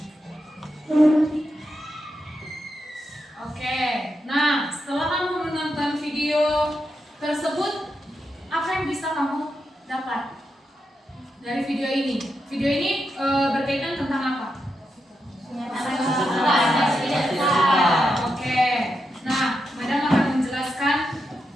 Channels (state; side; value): normal; both; correlation 0.85